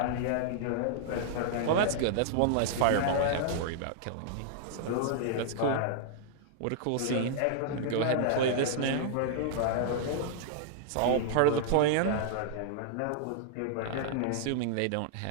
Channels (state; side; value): different; both; correlation -0.01